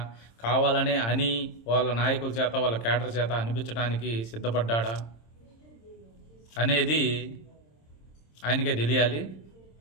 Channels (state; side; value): late; right; 26 ms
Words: కావాలనే అని వాళ్ళ నాయకుల చేత, వాళ్ళ క్యాడర్ చేత అనిపించడానికి సిద్ధపడ్డాడా అనేది ఆయనకే తెలియాలి.